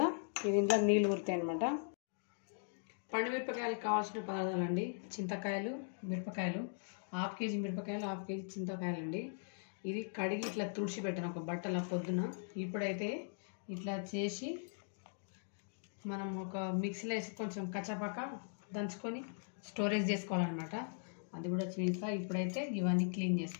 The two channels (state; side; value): silent; right; digital silence